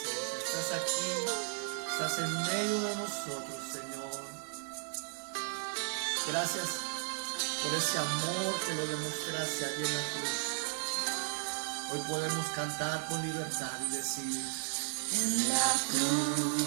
Estás aquí, estás en medio de nosotros, Señor. Gracias por ese amor que lo demostraste allí en la cruz. Hoy podemos cantar con libertad y decir: En la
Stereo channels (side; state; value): left; silent; digital silence